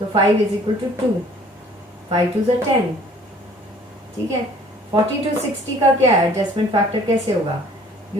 5 इज इक्वल टू 2, 5 2 is 10। ठीक है, 40 to 60 का क्या है, एडजस्टमेंट फैक्टर कैसे होगा,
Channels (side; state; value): both; normal; correlation 0.54